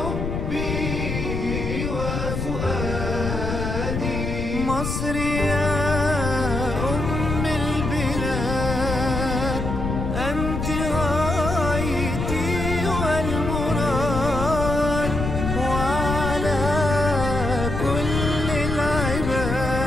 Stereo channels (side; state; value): left; noise; rumble, 3 dB below the sound